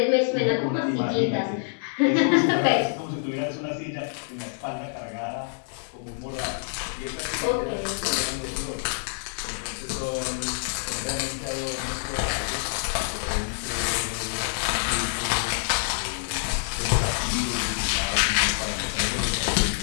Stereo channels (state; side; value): silent; right; 61 dB below the other